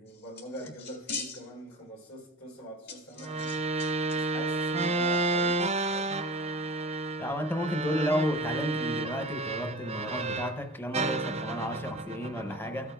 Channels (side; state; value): both; normal; correlation 0.37